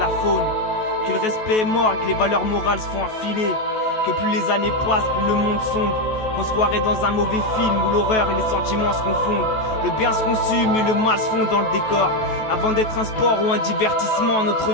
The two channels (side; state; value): right; late; 14 ms